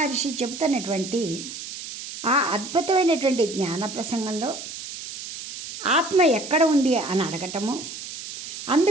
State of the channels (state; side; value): noise; right; hiss, 10 dB below the sound